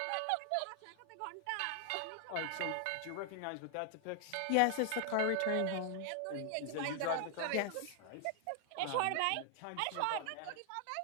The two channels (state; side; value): different; both; correlation 0.00